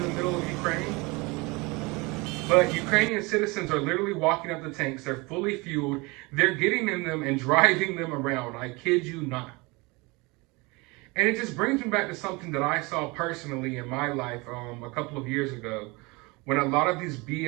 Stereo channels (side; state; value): left; quieter; 25.6 dB